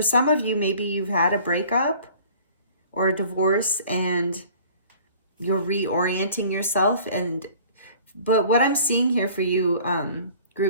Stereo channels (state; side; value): inverted; both; correlation -0.50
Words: some of you, maybe you've had a breakup or a divorce and you're reorienting yourself. But what I'm seeing here for you,